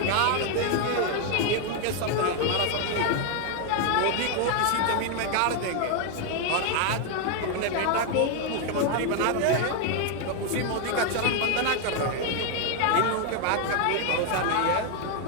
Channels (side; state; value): both; different; correlation 0.01